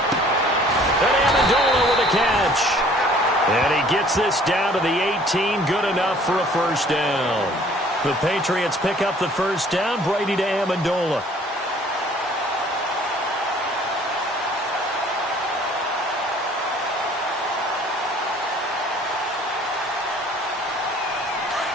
And Amendola with a catch. And he gets this down to the 18. Good enough for a first down. The Patriots pick up the first down. Brady to Amendola.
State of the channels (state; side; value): normal; both; correlation 0.55